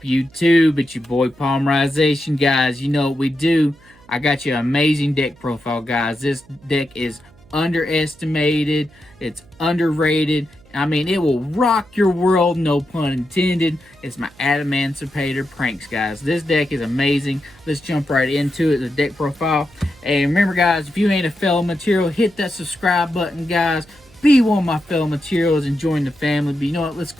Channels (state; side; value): noise; right; hum, 27 dB below the sound